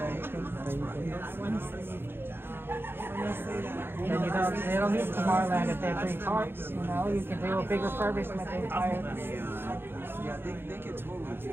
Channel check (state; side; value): late; left; 0.10 ms